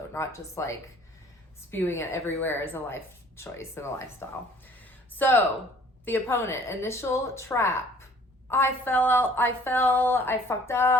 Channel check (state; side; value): normal; both; correlation 0.54